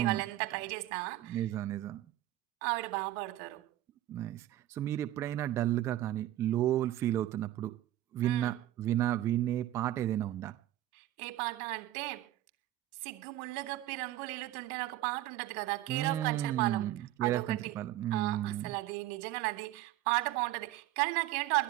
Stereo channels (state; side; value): quieter; left; 14.4 dB